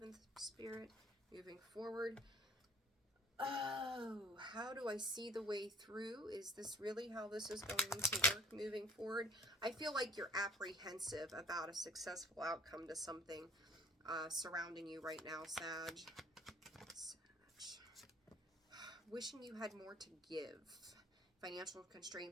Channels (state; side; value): normal; both; correlation 0.51